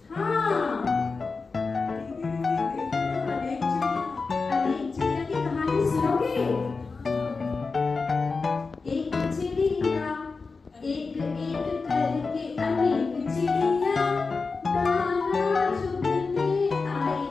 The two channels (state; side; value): quieter; right; 4.3 dB